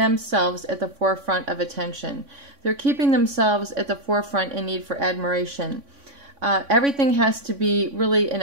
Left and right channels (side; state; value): left; late; 3.5 ms